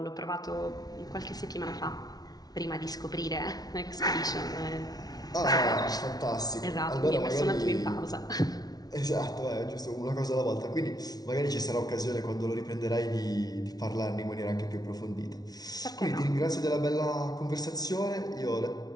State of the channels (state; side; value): late; right; 0.19 ms